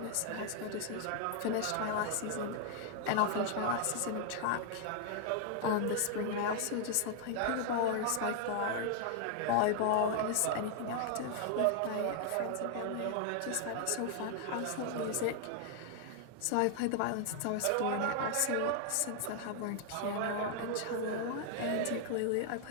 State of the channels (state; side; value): different; both; correlation 0.00